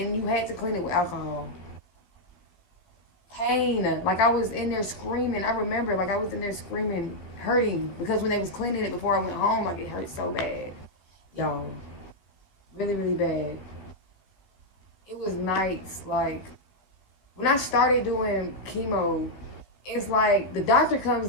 you had to clean it with alcohol. Pain, like I was in there screaming. I remember, like I was in there screaming, hurting because when they was cleaning it before I went home, like it hurt so bad, y'all, really, really bad. It was nights, like when I started doing chemo, it's like the doctor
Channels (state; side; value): late; right; 16 ms